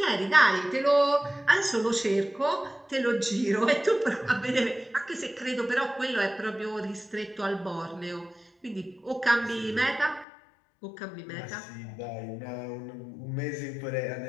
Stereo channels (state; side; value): drops out; right; at 10.2 s